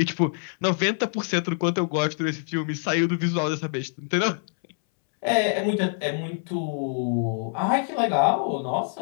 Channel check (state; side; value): silent; right; 62 dB below the other